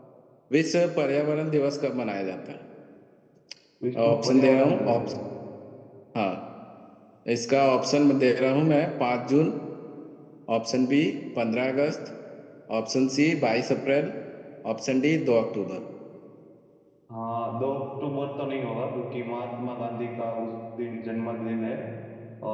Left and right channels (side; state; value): both; identical; correlation 1.00